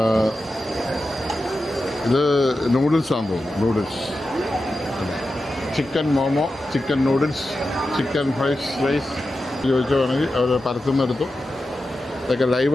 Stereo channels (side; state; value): both; normal; correlation 0.91